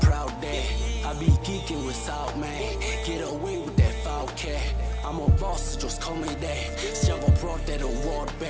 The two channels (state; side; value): identical; both; correlation 1.00